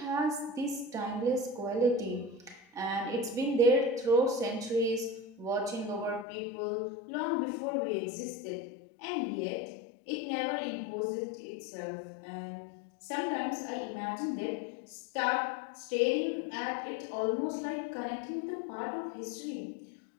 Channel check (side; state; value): right; drops out; at 6.2 s